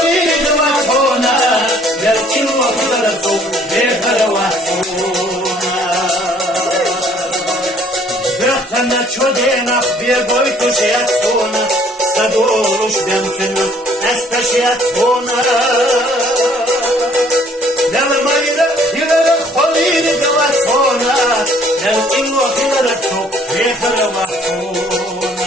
دواسونا بالقين وحيد رسول يخر واسونا أنا تشودينا خبير بويتوش ياتونا صدولوش بيمتنا استشيات هنا لما يلا خليل دواتونا لو إنو خلالتو يخر وحتونا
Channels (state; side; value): normal; both; correlation 0.60